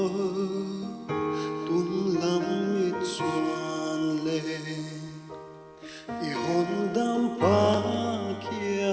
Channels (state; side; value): identical; both; correlation 1.00